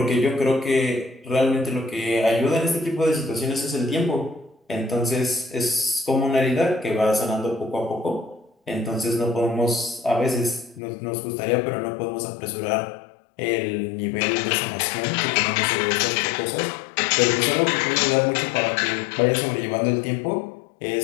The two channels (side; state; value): right; drops out; at 10.8 s